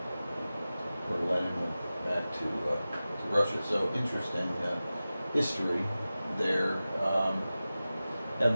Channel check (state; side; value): inverted; both; correlation -0.95